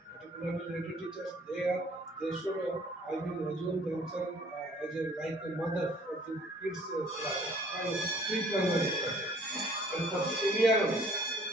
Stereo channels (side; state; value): both; normal; correlation 0.56